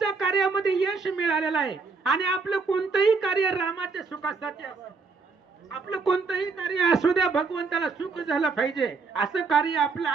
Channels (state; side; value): quieter; left; 4.6 dB